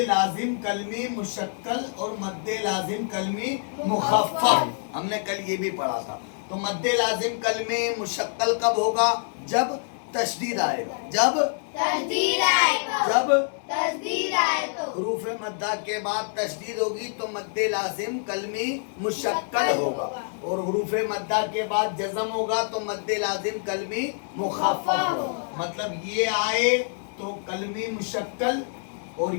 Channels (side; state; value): right; silent; digital silence